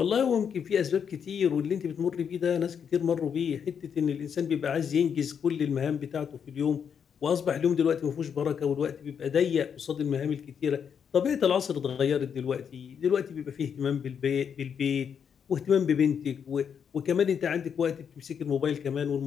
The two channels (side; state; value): right; quieter; 7.4 dB